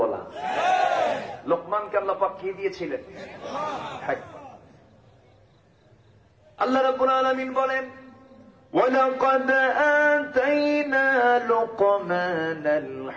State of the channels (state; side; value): identical; both; correlation 1.00